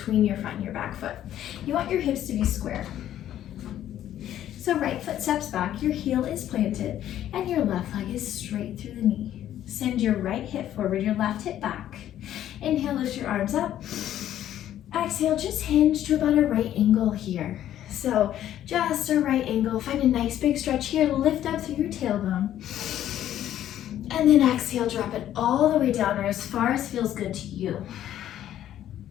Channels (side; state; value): right; quieter; 11.7 dB